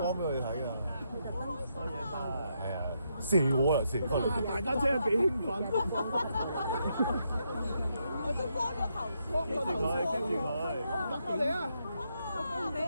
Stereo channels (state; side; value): inverted; both; correlation -0.79